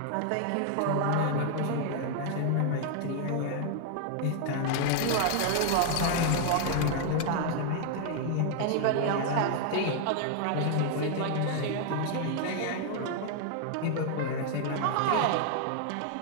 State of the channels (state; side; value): different; both; correlation 0.00